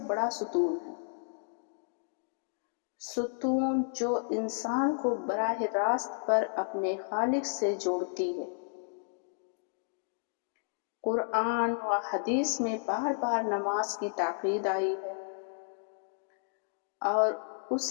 بڑا ستون ہے، ستون جو انسان کو براہ راست پر اپنے خالق سے جوڑتی ہے۔ قرآن و حدیث میں بار بار نماز کی تاکید آئی ہے اور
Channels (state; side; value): silent; right; digital silence